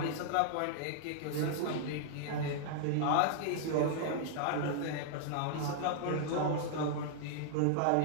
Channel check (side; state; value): both; different; correlation -0.01